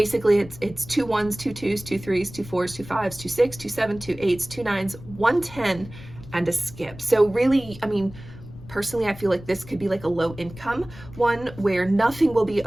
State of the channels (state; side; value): noise; left; rumble, 16 dB below the sound